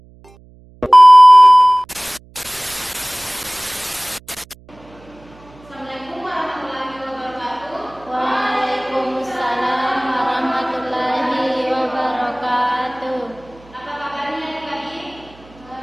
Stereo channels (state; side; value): noise; right; hum, 26 dB below the sound